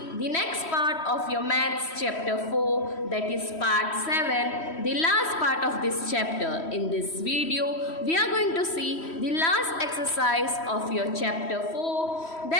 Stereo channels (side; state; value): right; late; 3.1 ms